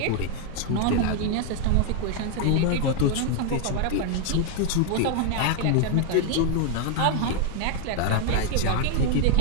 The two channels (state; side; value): different; both; correlation 0.00